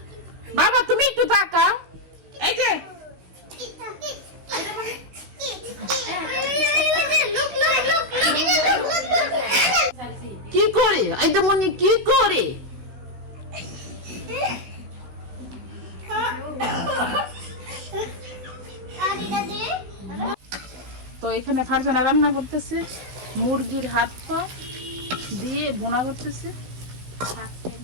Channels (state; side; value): late; left; 16 ms